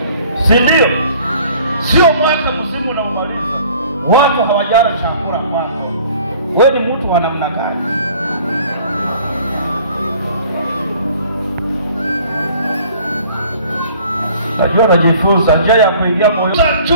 si ndio? Sio mwaka mzima na umaliza watu hawajala chakula kwako. Wewe ni mtu wa namna gani? Najua najifunza njia ya kuingia moyo.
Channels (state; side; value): inverted; both; correlation -0.53